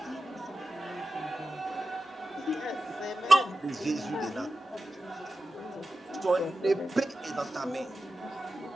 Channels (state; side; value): normal; both; correlation 0.93